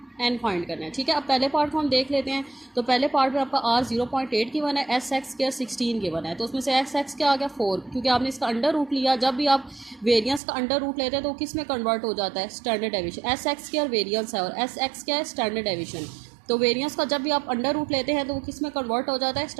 n फाइंड करना है, ठीक है। अब पहले पार्ट को हम देख लेते हैं। तो पहले पार्ट में आपका r 0.8 गिवन है, एस एक्स स्क्वायर 16 गिवन है। तो उसमें से एक्स क्या आ गया 4, क्योंकि आपने इसका अंडर रूट लिया। जब भी आप वेरिएंस का अंडर रूट लेते हैं तो किस में कन्वर्ट हो जाता है, standard deviation. S x square variance है और एस एक्स क्या है, स्टैंडर्ड डेविएशन। तो वेरिएंस का जब भी आप अंडर रूट लेते हैं तो वो किस में कन्वर्ट हो जाता है,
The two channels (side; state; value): left; drops out; at 10.4 s